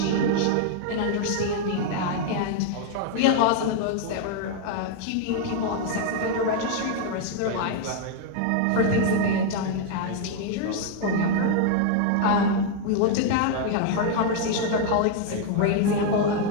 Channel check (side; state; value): both; different; correlation 0.00